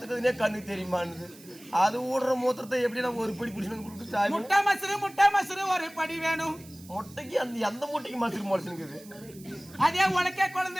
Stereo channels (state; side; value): noise; right; hiss, 21 dB below the sound